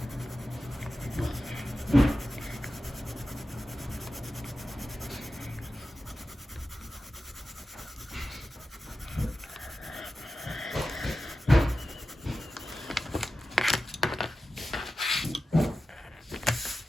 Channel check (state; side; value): normal; both; correlation 0.93